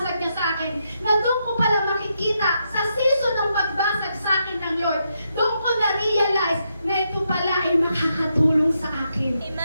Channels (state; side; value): inverted; both; correlation -0.81